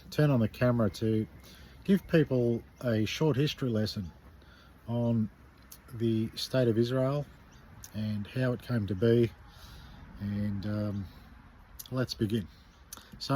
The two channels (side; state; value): both; identical; correlation 1.00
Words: turn on the camera to give people a short history lesson on the state of Israel and how it came to be, and let's begin.